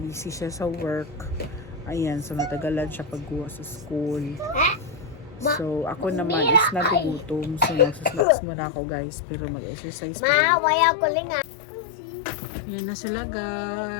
siya sa work. Ayan. So, natagalan siya pagkuha sa school. So, ako naman is nagugutom. So, magsusnacks muna ako guys. Pero mag-exercise pa rin. Waya ko lang. Yan na sila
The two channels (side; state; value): right; drops out; at 8.2 s